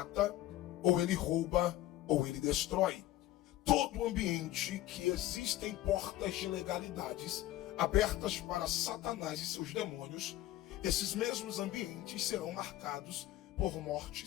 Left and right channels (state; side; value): quieter; right; 15.0 dB